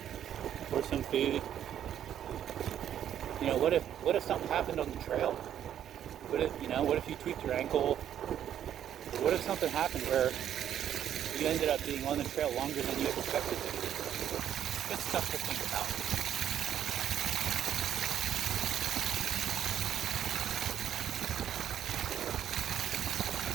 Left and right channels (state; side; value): quieter; left; 10.1 dB